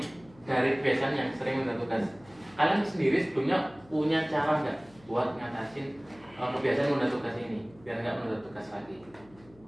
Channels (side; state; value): left; noise; hum, 25 dB below the sound